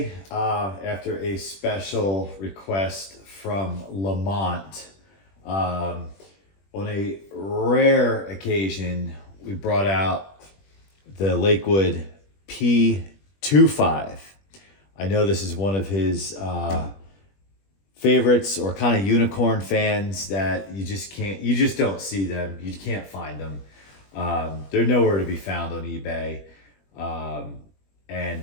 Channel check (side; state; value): right; late; 21 ms